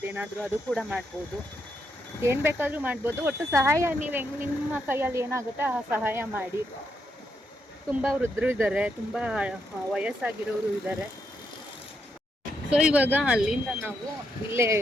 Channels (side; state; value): both; normal; correlation 0.80